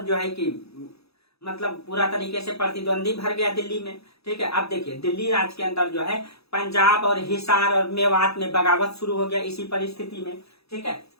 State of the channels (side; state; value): right; late; 0.78 ms